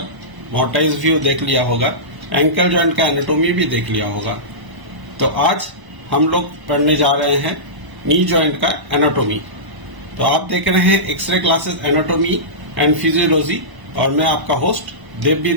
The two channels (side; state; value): left; late; 1.0 ms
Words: मोटाइज व्यू देख लिया होगा, एंकल जॉइंट का एनाटॉमी भी देख लिया होगा। तो आज हम लोग पढ़ने जा रहे हैं नी जॉइंट का एनाटॉमी। तो आप देख रहे हैं x ray classes anatomy and physiology और मैं आपका होस्ट